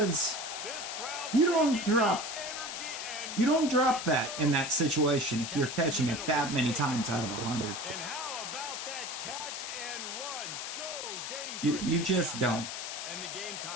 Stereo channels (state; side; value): noise; left; hiss, 6 dB below the sound